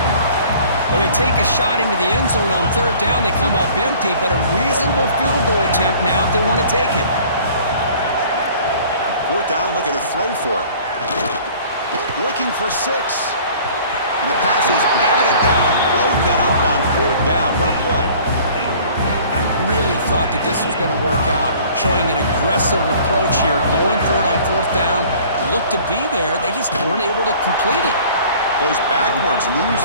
Well, they take a shot into the end zone on 3rd down. They come up empty, but a reasonable field goal attempt now if they want to take it. 4th down, look at a throw for it. Looking for 6. And the pass is batted down, broken up on 4th down. What a play. I really thought that this was going to work out. Showing an aggressive approach here, going for it on 4th down. Looked to be there. They just weren't able to complete it. Goes backwards,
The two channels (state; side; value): inverted; both; correlation -0.50